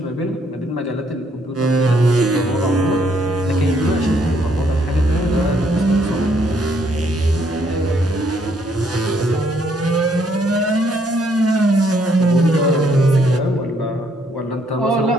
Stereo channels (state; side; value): normal; both; correlation 0.69